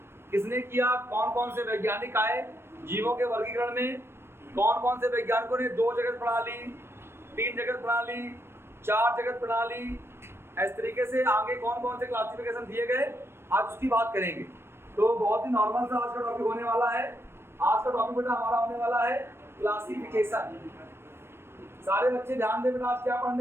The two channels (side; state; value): left; late; 0.12 ms